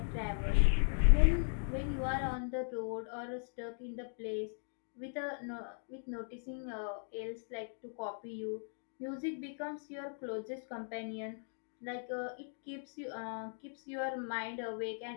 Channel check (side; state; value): right; silent; digital silence